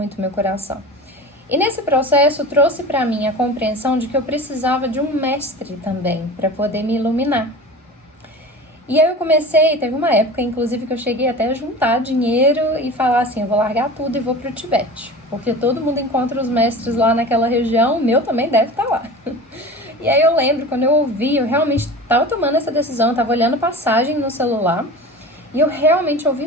meu coração. E nesse processo trouxe para mim a compreensão de que eu precisava de um mestre também para poder me iluminar. E aí eu teve uma época inclusive que eu cheguei até a juntar dinheiro e falar eu vou largar tudo e vou para o Tibete, porque todo mundo encontra os mestres lá naquela região, o meu também deve estar lá. E aí eu lembro, quando eu ouvi, eu realmente estava tomando essa decisão, eu estava olhando passagem no celular e eu realmente ouvi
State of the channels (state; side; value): normal; both; correlation 0.35